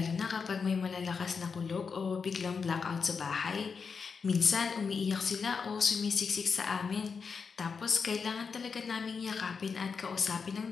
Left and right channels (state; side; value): quieter; right; 5.5 dB